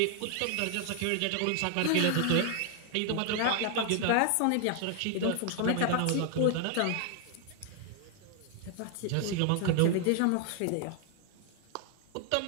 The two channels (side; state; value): both; different; correlation 0.00